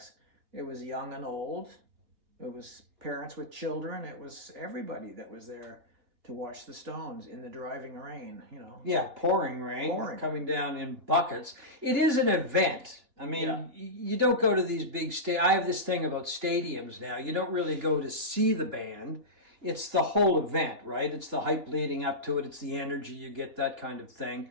it was young and old. It was parents with children. It was everybody that was there to watch the Stones in the driving rain. Yeah, pouring rain, coming down in buckets. It is an event. I mean, You don't go to these big I have this thing about stadiums now. You don't really go to see the band. It's the whole event, right? It's the hype leading up to it. It's the energy you get, that kind of thing.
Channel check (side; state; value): left; late; 3.1 ms